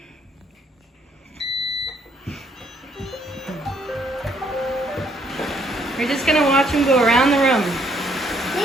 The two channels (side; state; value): both; normal; correlation 0.68